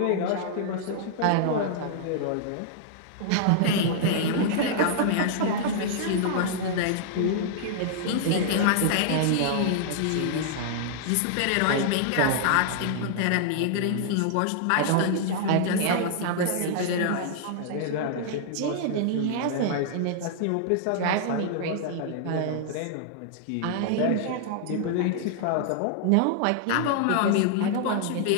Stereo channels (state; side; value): different; both; correlation -0.01